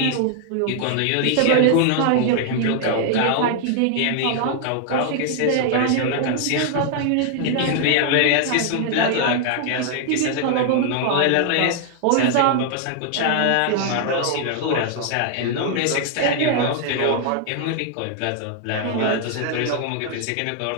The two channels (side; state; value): both; different; correlation 0.00